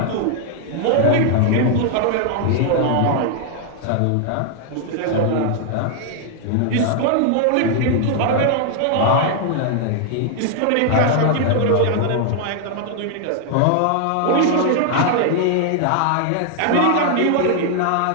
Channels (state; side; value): different; both; correlation 0.00